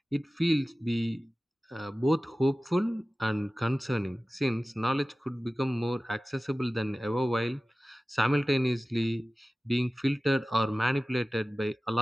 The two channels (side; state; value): both; normal; correlation 0.96